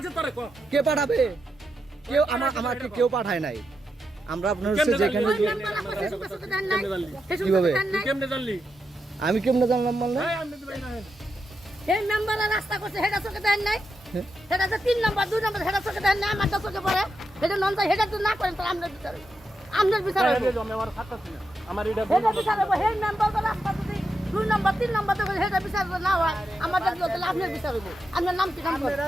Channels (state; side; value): normal; both; correlation 0.86